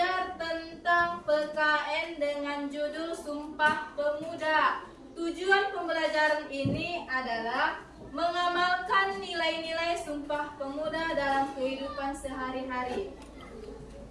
tentang PKN dengan judul Sumpah Pemuda. Tujuan pembelajaran ini adalah mengamalkan nilai-nilai Sumpah Pemuda dalam kehidupan sehari-hari.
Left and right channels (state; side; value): identical; both; correlation 1.00